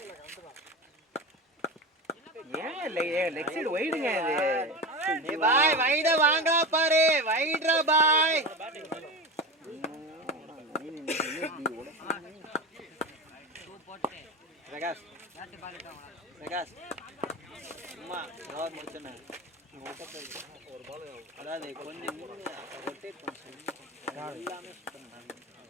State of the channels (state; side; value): normal; both; correlation 0.24